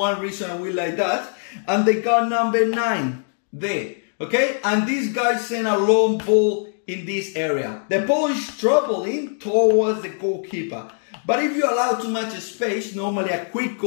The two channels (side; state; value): right; silent; digital silence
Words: reason and we like that, and they got number 9 there, okay? And these guys send a long ball in this area. The ball is traveling towards the goalkeeper. But if you allow too much space, normally a